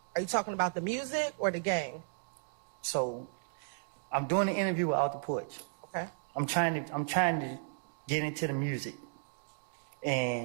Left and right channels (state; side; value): silent; left; digital silence